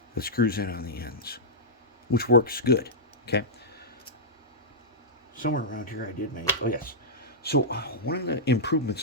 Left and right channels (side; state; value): both; normal; correlation -0.12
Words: that screws in on the ends, which works good. Okay. Somewhere around here I did make, oh yes. So one of the